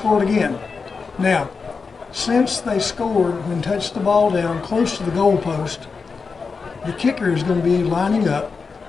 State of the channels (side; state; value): right; quieter; 4.9 dB